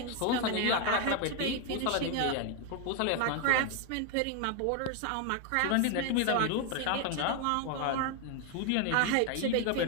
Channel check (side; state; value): both; different; correlation 0.01